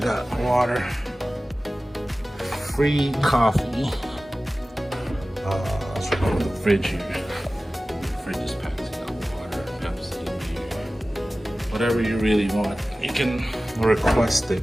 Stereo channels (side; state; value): both; normal; correlation 0.96